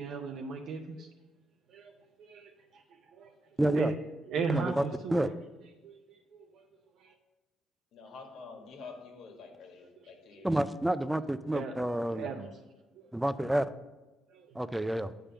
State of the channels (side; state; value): both; normal; correlation 0.90